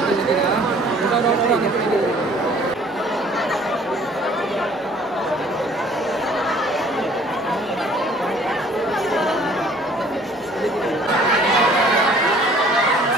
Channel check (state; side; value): normal; both; correlation 0.55